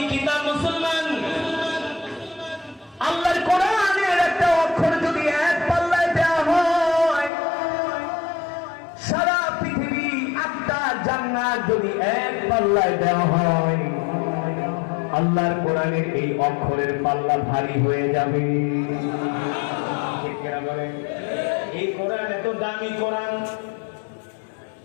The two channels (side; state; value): right; drops out; at 7.3 s